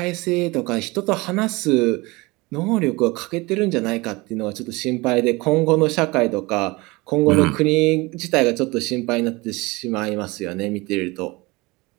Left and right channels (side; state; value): left; quieter; 23.5 dB